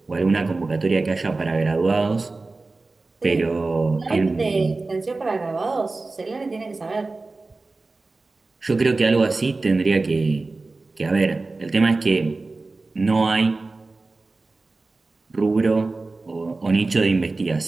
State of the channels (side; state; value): left; quieter; 3.5 dB